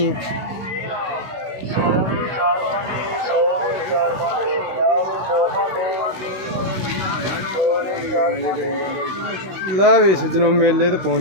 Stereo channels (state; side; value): late; left; 16 ms